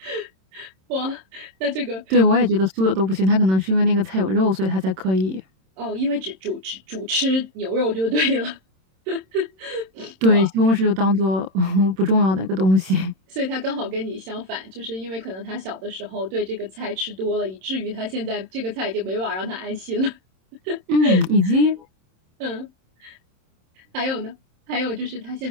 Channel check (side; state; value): left; late; 27 ms